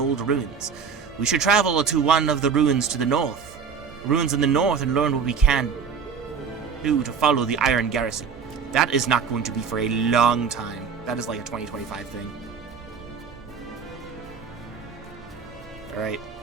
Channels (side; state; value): left; quieter; 6.3 dB